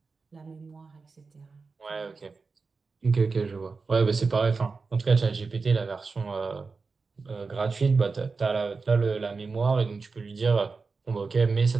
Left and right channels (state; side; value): quieter; left; 4.4 dB